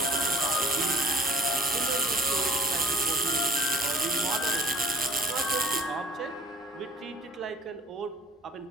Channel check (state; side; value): normal; both; correlation 0.50